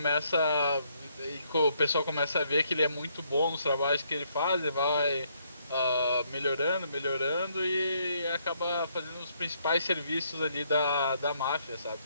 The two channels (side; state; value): both; inverted; correlation -0.71